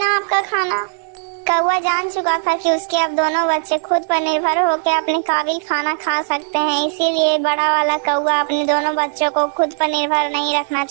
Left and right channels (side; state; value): left; silent; digital silence